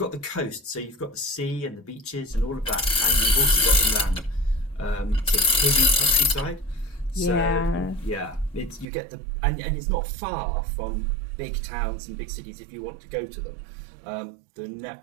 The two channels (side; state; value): left; drops out; at 8.8 s